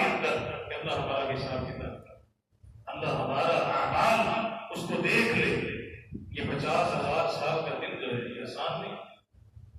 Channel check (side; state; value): both; identical; correlation 1.00